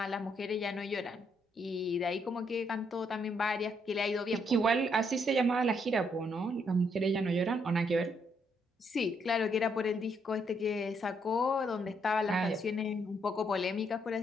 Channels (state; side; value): normal; both; correlation 0.73